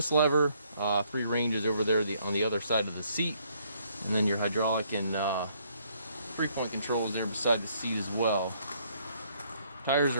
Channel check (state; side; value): inverted; both; correlation -0.68